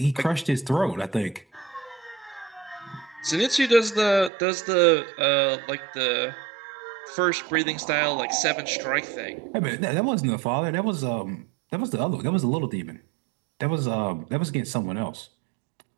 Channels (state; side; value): drops out; left; at 4.3 s